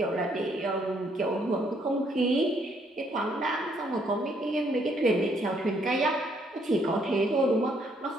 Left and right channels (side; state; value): both; normal; correlation 0.69